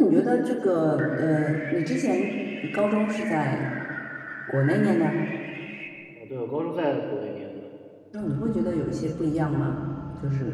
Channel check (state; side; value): identical; both; correlation 1.00